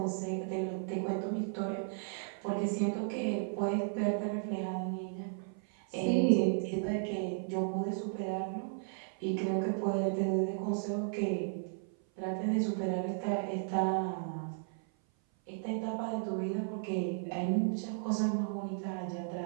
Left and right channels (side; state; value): left; silent; 55 dB below the other